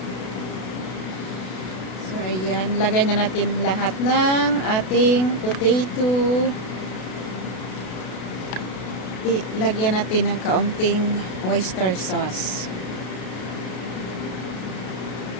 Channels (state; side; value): late; right; 32 ms